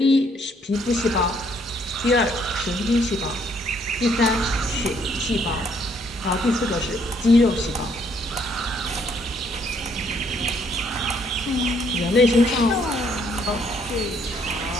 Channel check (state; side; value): normal; both; correlation 0.67